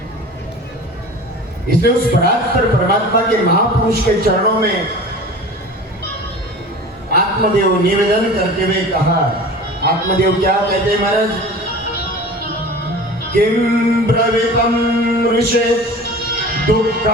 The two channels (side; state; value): both; normal; correlation 0.38